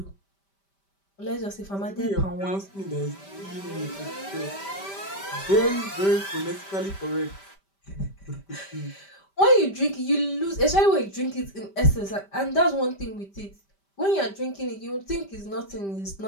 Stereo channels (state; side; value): late; right; 5.1 ms